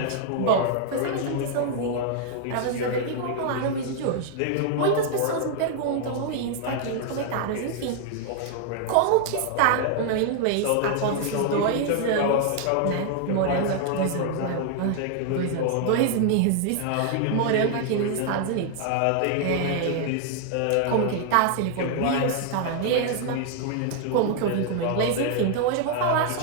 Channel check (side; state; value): both; different; correlation 0.00